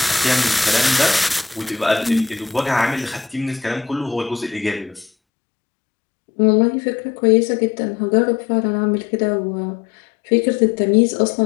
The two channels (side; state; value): right; drops out; at 5.1 s